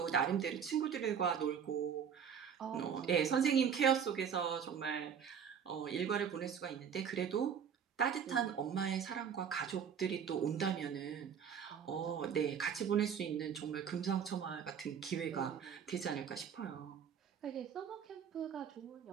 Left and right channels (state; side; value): quieter; left; 7.6 dB